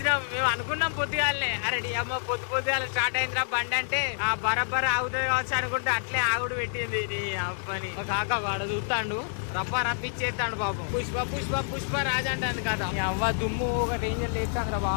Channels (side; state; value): right; silent; digital silence